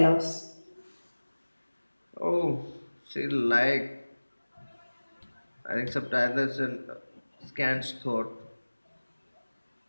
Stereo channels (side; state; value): both; inverted; correlation -1.00